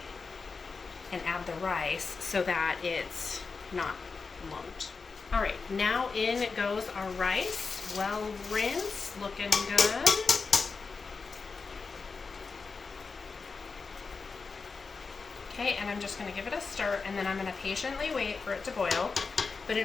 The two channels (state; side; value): quieter; right; 4.7 dB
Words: and add the rice so that it's not lumped. All right, now in goes our rice, well rinsed, looking good. Okay, and I'm just going to give it a stir, and then I'm going to patiently wait for it to boil. But